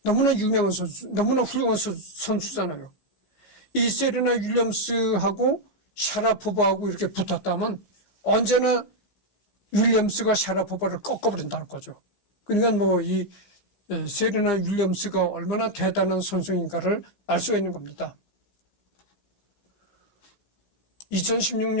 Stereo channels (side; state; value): right; late; 16 ms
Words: 너무나 유명한 선수, 너무나 훌륭한 선수잖아요. 이 세르나 윌리엄스하고 샤라포바하고 이렇게 붙었다면 언제나 윌리엄스가 샤라포바를 꺾어버린다는 거죠. 그러니까 뭐 이 세르나 윌리엄스가 얼마나 대단한 선수인가를 알 수 있는 겁니다.